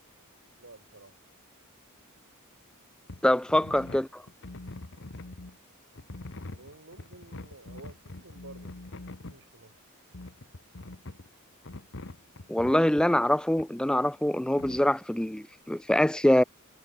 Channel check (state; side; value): normal; both; correlation 0.97